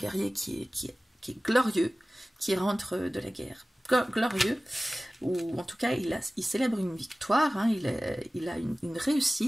qui est glorieux, qui rentre de la guerre. Glorieux, ou en tout cas, il célèbre une victoire, hein, il a une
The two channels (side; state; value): both; normal; correlation 0.97